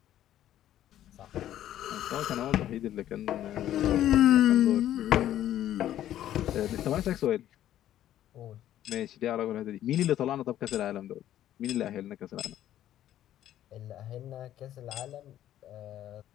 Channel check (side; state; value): right; quieter; 12.2 dB